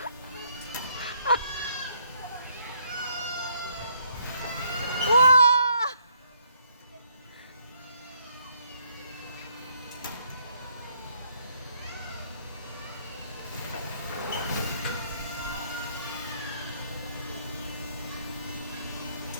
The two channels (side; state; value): both; inverted; correlation -0.69